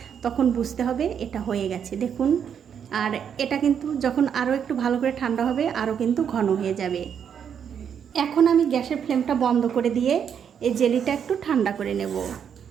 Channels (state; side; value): quieter; left; 7.9 dB